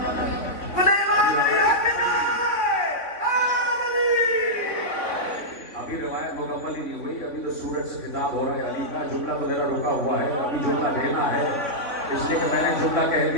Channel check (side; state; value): right; late; 3.5 ms